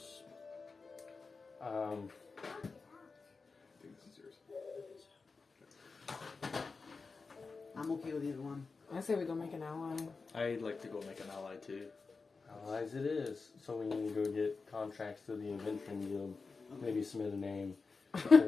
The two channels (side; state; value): right; quieter; 4.4 dB